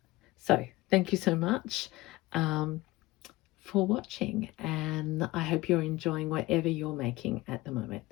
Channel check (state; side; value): quieter; right; 19.7 dB